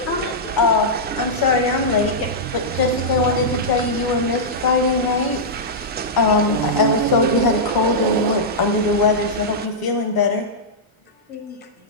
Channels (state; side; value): normal; both; correlation -0.11